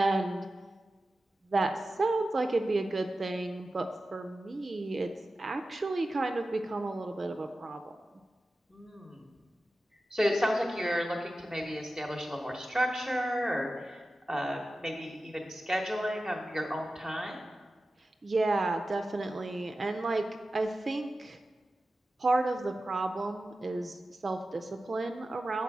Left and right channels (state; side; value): normal; both; correlation 0.94